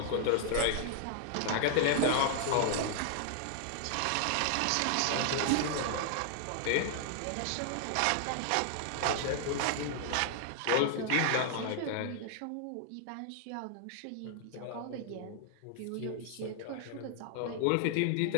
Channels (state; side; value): different; both; correlation 0.00